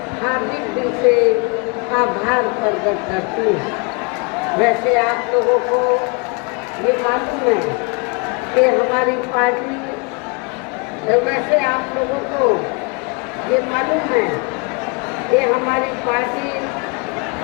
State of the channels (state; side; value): quieter; right; 31.7 dB